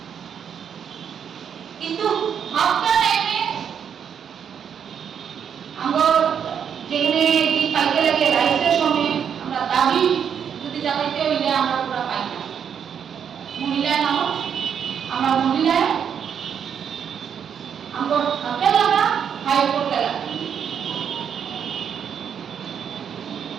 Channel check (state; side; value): quieter; left; 7.9 dB